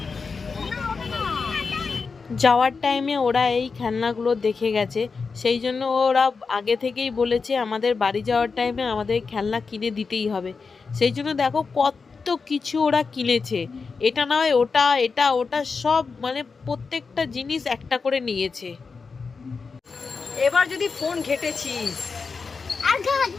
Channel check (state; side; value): quieter; right; 4.8 dB